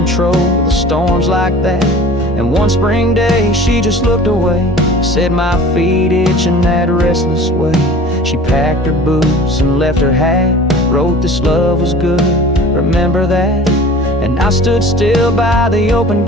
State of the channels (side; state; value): both; normal; correlation 0.43